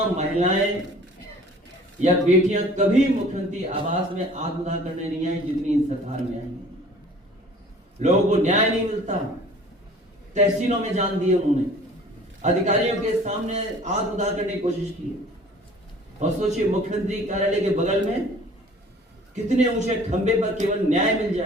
महिलाएं या बेटियां कभी मुख्यमंत्री आवास में आत्मदाह करने नहीं आई जितनी इस सरकार में आई है। लोगों को न्याय नहीं मिलता, तहसीलों में जान दिए उन्होंने, अधिकारियों के सामने आत्मदाह करने की कोशिश की। और सोचिए मुख्यमंत्री कार्यालय के बगल में कितने ऊंचे खंबे पर केवल न्याय मिल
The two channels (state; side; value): normal; both; correlation 0.49